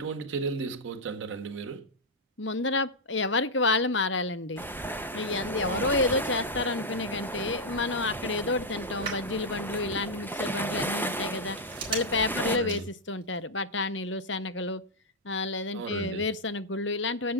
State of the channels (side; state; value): both; normal; correlation -0.03